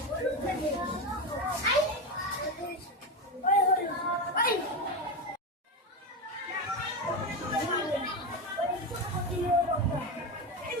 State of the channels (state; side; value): normal; both; correlation 0.16